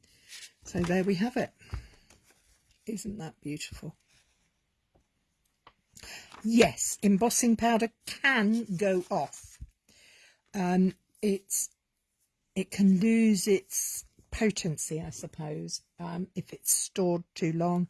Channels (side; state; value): both; identical; correlation 1.00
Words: So there we have it. Isn't that beautiful? Yes, embossing powder can go off. It can lose its potency, I suppose, if it's stored too long,